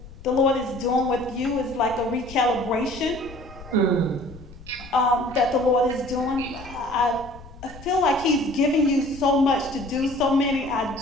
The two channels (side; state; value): left; noise; rumble, 17 dB below the sound